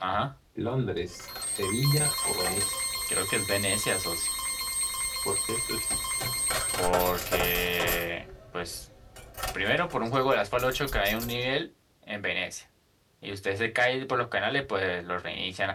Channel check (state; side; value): identical; both; correlation 1.00